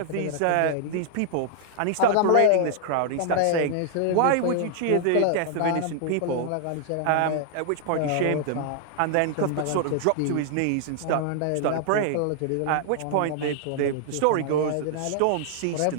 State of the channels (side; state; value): both; different; correlation -0.01